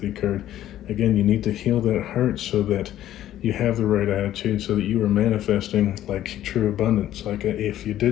card, again, you need to heal that heart so that you have the right attitude, so that you are manifesting like true abundance. Like if you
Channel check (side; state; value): right; quieter; 12.6 dB